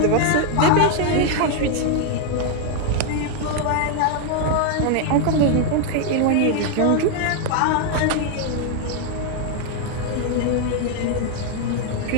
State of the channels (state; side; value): different; both; correlation 0.00